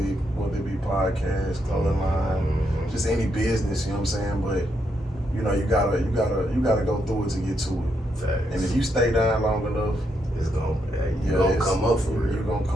whether it be podcasts, clothing line, just any business, you know what I'm saying? But you gotta go through it to get to it. Facts. And if you stay down long enough, it's gonna come up for real. You're gonna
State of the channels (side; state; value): both; normal; correlation 0.79